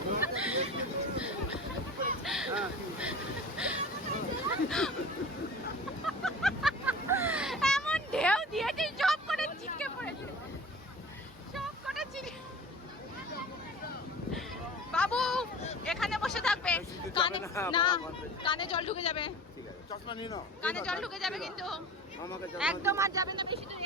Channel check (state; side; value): normal; both; correlation 0.39